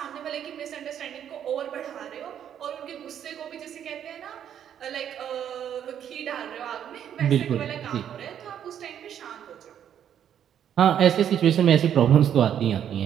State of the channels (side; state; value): left; quieter; 9.5 dB